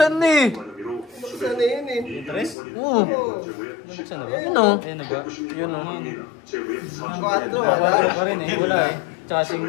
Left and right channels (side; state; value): right; drops out; at 2.6 s